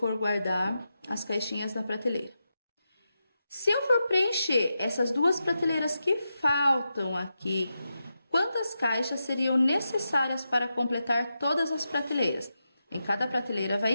guardar as caixinhas na prateleira. Se eu for preencher essas 2 prateleiras que faltam aqui, quantas caixas seriam necessárias para completar todas as prateleiras? Em cada prateleira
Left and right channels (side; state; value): both; inverted; correlation -0.88